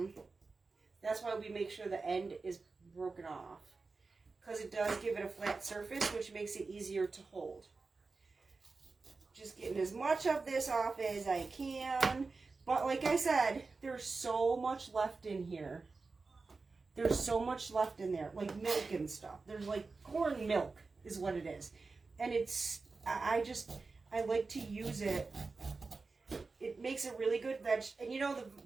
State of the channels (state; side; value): quieter; left; 4.1 dB